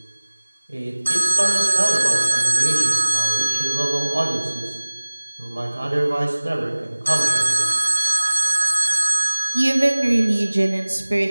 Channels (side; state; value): both; inverted; correlation -1.00